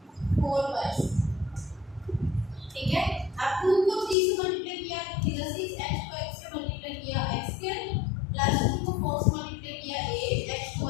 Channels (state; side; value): drops out; right; at 4.2 s